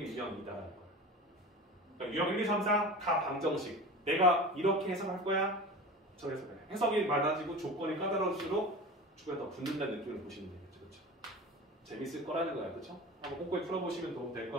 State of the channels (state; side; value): normal; both; correlation 0.33